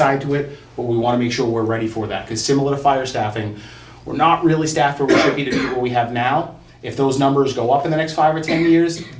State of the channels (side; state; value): both; identical; correlation 1.00